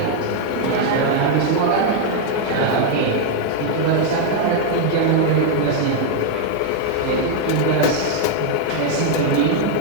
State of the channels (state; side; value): different; both; correlation 0.00